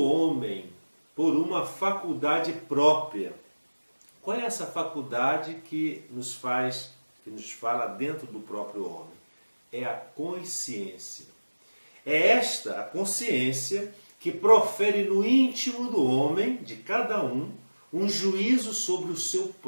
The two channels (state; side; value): inverted; both; correlation -1.00